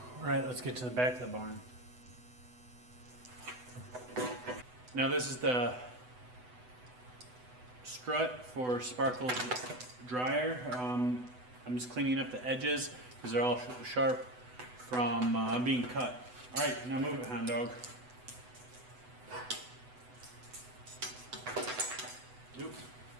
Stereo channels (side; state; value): left; late; 8.0 ms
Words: All right, let's get to the back of the barn. Now this is the strut for Sparkle's dryer. I'm just cleaning up the edges because they're all sharp from being cut. All right, now move it, hound dog. Oop,